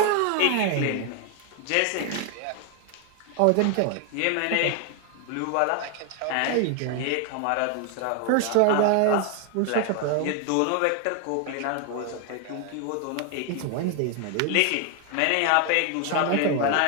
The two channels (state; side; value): different; both; correlation 0.00